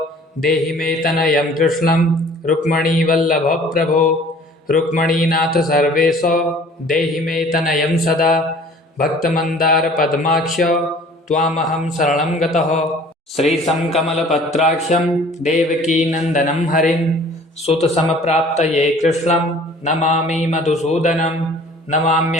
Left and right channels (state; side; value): normal; both; correlation 0.50